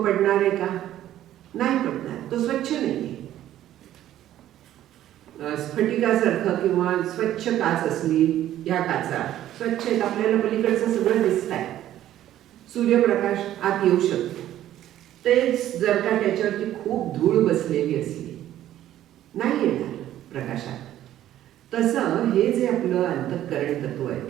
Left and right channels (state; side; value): quieter; left; 12.6 dB